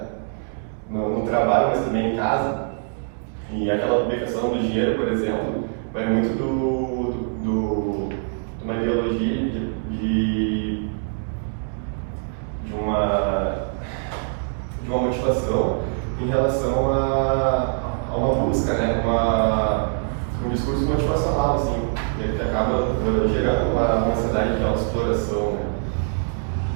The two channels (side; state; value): left; silent; digital silence